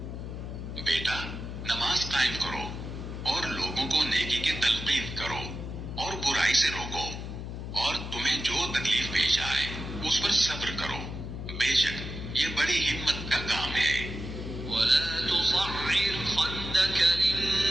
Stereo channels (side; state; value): left; noise; hum, 7 dB below the sound